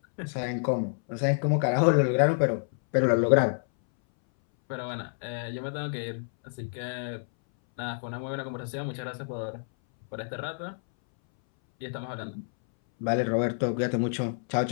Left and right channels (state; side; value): silent; right; 59 dB below the other